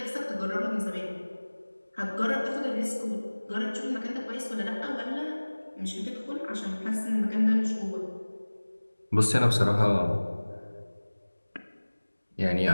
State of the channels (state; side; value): inverted; both; correlation -1.00